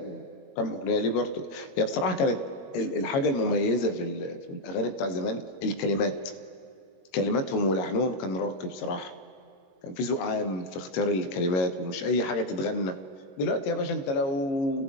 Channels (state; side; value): late; right; 21 ms